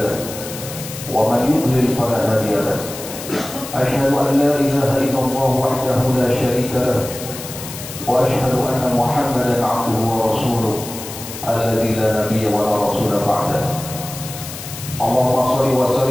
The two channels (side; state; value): left; noise; hiss, 11 dB below the sound